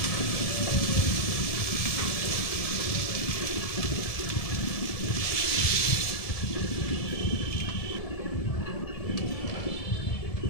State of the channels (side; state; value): right; late; 1.7 ms